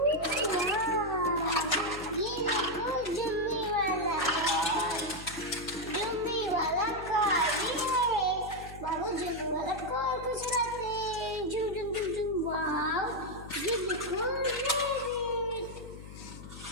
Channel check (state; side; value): noise; left; hum, 13 dB below the sound